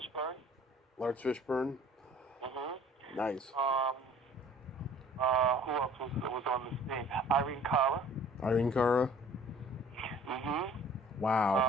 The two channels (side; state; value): both; normal; correlation 0.52